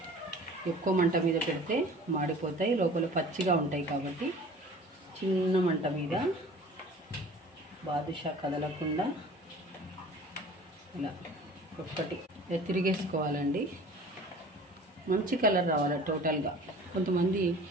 ఎక్కువ మంట మీద పెడితే మాడిపోతాయి, లోపల పచ్చిగా ఉంటాయి. కాబట్టి చిన్న మంట మీద బాదుషా కదలకుండా ఇలా ఒక్కటి తిరిగేసుకోవాలండి. మంచి కలర్ రావాలి టోటల్గా. కొంతమంది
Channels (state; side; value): normal; both; correlation 0.45